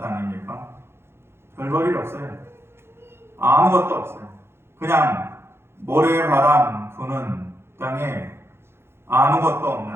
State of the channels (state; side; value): late; left; 0.12 ms